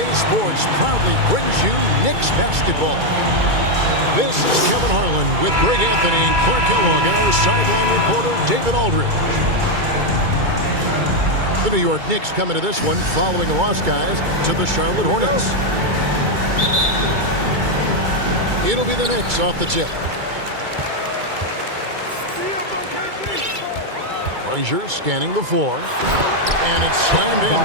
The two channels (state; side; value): late; left; 2.3 ms